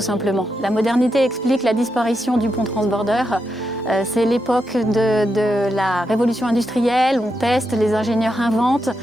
La modernité explique la disparition du pont transbordeur. C'est l'époque de la révolution industrielle, on teste, les ingénieurs inventent.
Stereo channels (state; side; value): normal; both; correlation 0.85